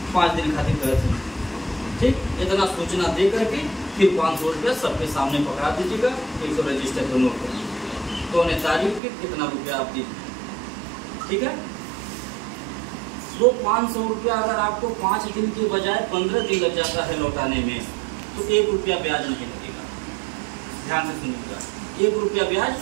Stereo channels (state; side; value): drops out; left; at 9.0 s